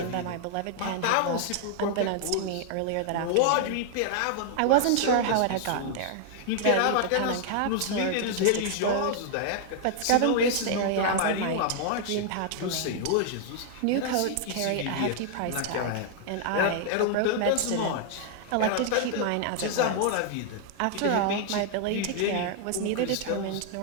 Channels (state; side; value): different; both; correlation -0.01